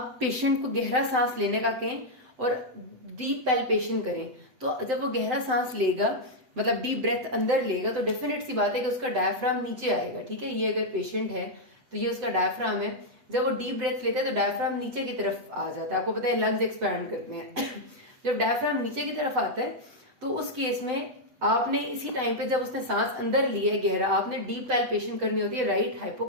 पेशेंट को गहरा सांस लेने का कहें और डीप पैल्पेशन करें, तो जब वो गहरा सांस लेगा, मतलब डीप ब्रेथ अंदर लेगा, तो डेफिनेट सी बात है कि उसका डायफ्राम नीचे आएगा। ठीक है, ये अगर पेशेंट है तो ये उसका डायफ्राम है। जब वो डीप ब्रेथ लेता है तो डायफ्राम नीचे की तरफ आ जाता है। आपको पता है लंग्स एक्सपैंड करते हैं जब डायफ्राम नीचे की तरफ आता है तो उस केस में आपने इसी टाइम पे, जब उसने सांस अंदर लिया है गहरा, आपने डीप पैल्पेशन करनी होती है राइट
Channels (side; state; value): left; late; 7.8 ms